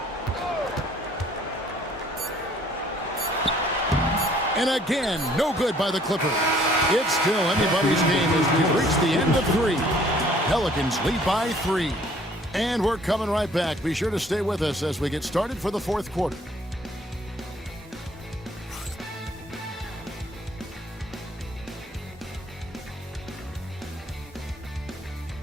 And again, no good by the Clippers. It's still anybody's game as we've reached the end of 3. Pelicans lead by 3. And we're coming right back. Be sure to stay with us as we get started for the fourth quarter.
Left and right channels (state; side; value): normal; both; correlation 0.59